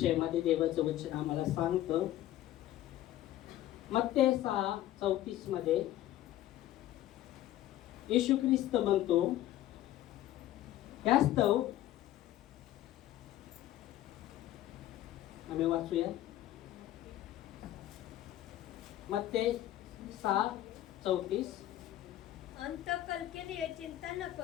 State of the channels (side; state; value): right; quieter; 13.8 dB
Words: देवाचं वचन आम्हाला सांगतं मत्ते 6:34 मध्ये येशू ख्रिस्त म्हणतो, यास्तव आम्ही वाचूया मत्ते 6:34. अंतकल के लिए चिंता न